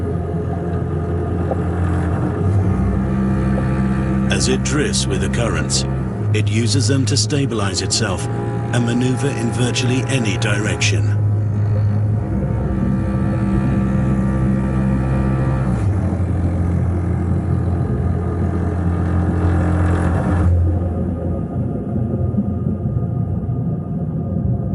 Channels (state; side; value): identical; both; correlation 1.00